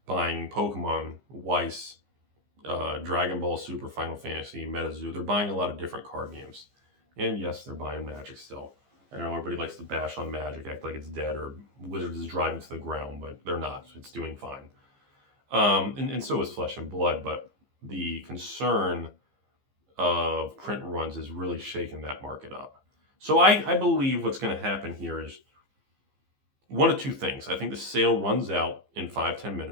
buying Pokemon, Weiss, Dragon Ball Super, Final Fantasy, Metazoo. They're buying a lot of different card games. And yes, they're buying Magic still. I know everybody likes to bash on Magic, act like it's dead or Wizards is driving to the ground, but they're not. It's doing fine. And so is Flesh and Blood, but the concern of print runs is really shaking that market up. So I believe what's going to happen here is one of two things. I think the sale runs out in 5-10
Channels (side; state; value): left; late; 15 ms